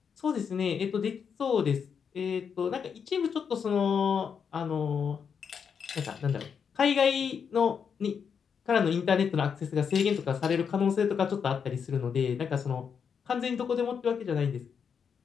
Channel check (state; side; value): quieter; right; 6.8 dB